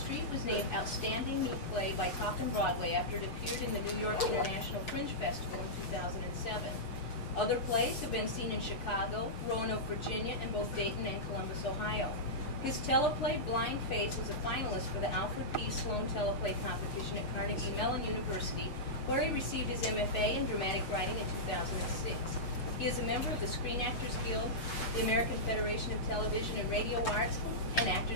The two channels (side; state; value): right; late; 6.9 ms